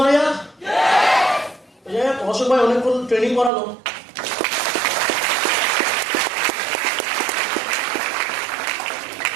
यार অশোক ভাই অনেকক্ষণ ট্রেনিং করালো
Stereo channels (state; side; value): drops out; left; at 3.5 s